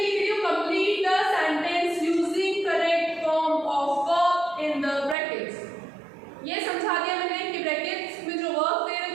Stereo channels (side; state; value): left; drops out; at 5.2 s